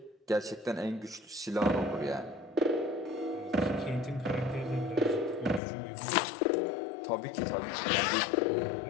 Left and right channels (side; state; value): right; drops out; at 5.6 s